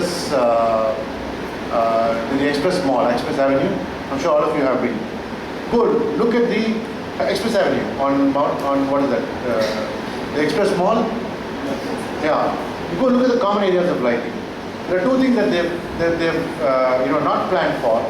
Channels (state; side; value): identical; both; correlation 1.00